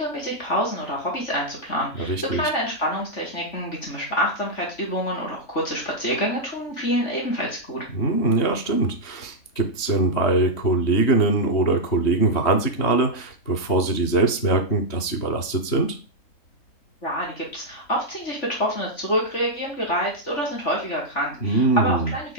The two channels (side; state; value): right; late; 3.2 ms